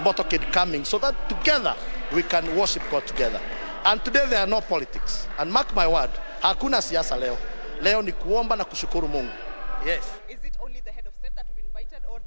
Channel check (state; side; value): inverted; both; correlation -1.00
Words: coming, so that together we can worship God together. And today there are no politics. And mark my word, hakuna siasa leo. Leo ni kuomba na kushukuru Mungu. Yes. Is it only the head of state that will be invited, or